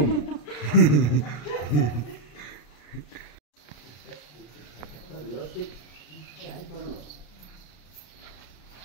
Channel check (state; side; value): late; right; 34 ms